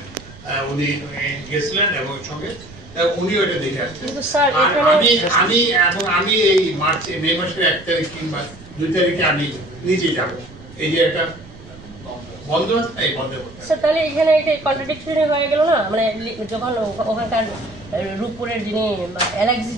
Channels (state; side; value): noise; right; rumble, 20 dB below the sound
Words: উনি গেছিলেন এবং সঙ্গে উনি ওটা দেখে আসছেন। আমি এই মে মাসের 1 তারিখ কিংবা 2 তারিখে আমি নিজে যাবো। এই যে একটা বন্ধ আছে, এই বন্ধ করতে। তাহলে এখানে একটা কন্ট্রাডিকশন হয়ে গেল না, মানে যখন ওখানকার রূপপুরের যিনি এলএক্সি